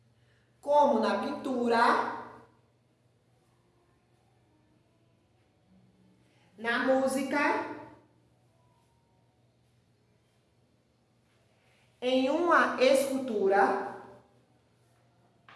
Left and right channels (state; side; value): identical; both; correlation 1.00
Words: como na pintura, na música, em uma escultura